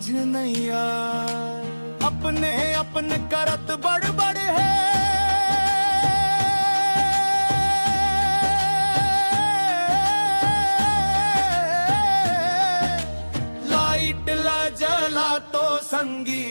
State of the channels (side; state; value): both; inverted; correlation -1.00